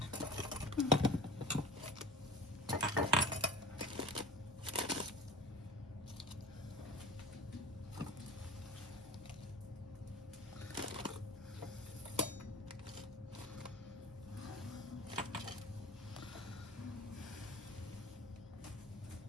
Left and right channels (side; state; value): both; normal; correlation 0.36